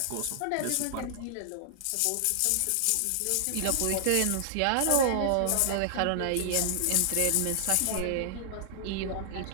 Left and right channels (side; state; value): both; different; correlation -0.01